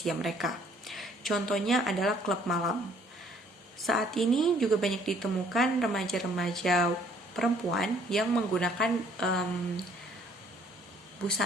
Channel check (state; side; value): normal; both; correlation 0.61